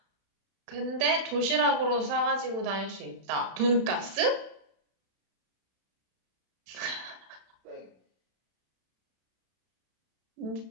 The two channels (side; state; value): left; late; 31 ms